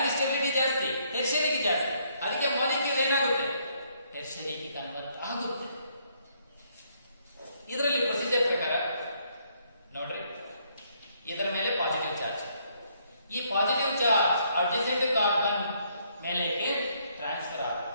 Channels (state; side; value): inverted; both; correlation -0.70